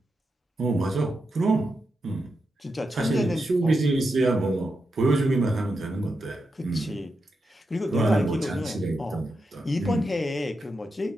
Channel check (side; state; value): both; normal; correlation 0.87